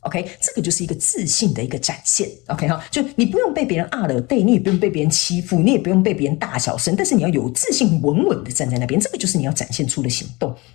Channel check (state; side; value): quieter; right; 23.9 dB